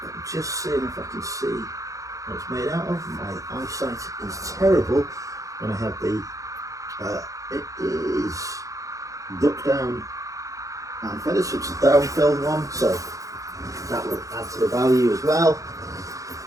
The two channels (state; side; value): late; left; 0.16 ms